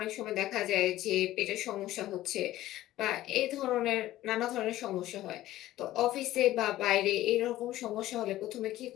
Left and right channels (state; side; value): quieter; right; 15.0 dB